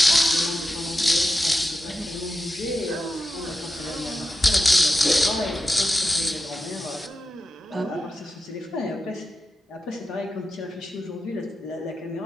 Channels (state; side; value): normal; both; correlation 0.90